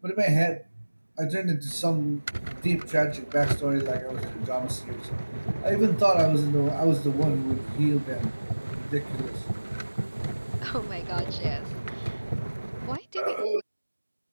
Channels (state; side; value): inverted; both; correlation -1.00